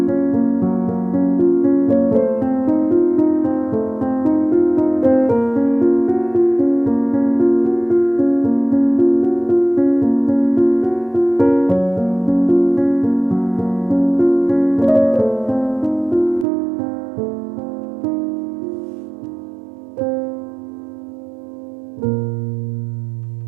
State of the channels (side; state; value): left; drops out; at 16.4 s